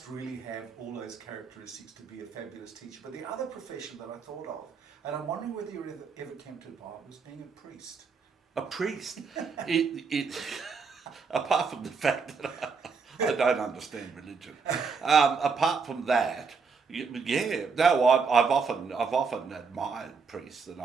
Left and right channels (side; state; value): left; quieter; 5.2 dB